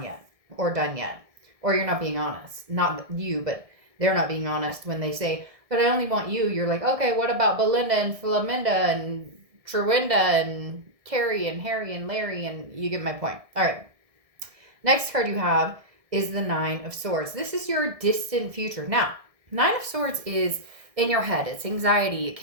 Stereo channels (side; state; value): left; late; 1.6 ms